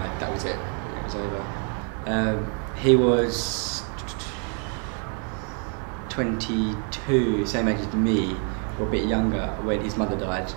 that was it. It was over. He was 22, same age as me, or a bit younger, when his mother died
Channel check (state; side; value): quieter; left; 39.2 dB